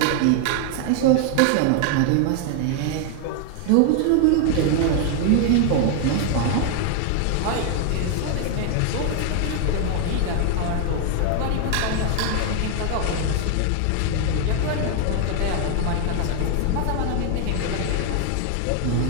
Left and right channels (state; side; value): different; both; correlation 0.00